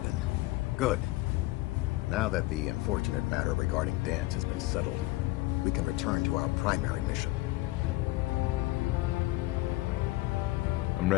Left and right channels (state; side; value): quieter; right; 19.4 dB